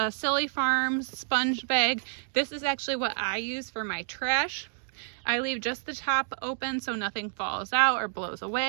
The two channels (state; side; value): silent; left; digital silence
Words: Silly Farms sponge bag. This is actually what I use for my trash. I leave just the top open so nothing falls out or blows